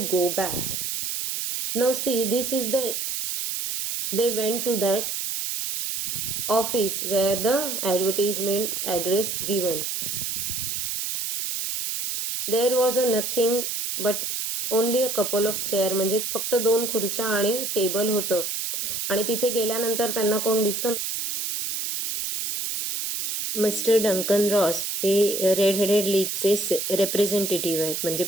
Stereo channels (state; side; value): noise; right; hiss, 3 dB below the sound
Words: go back. Now see, they went to that office where the advertisement address given. There was a nothing but only a couple of chair, म्हणजे फक्त 2 खुर्च्या आणि table होतं. आणि तिथे गेल्यानंतर त्यांना कोण दिसतं? मिस्टर डंकन रॉस हे रेड हेडेड लीगचे रिप्रेझेंटेटिव्ह आहेत, म्हणजे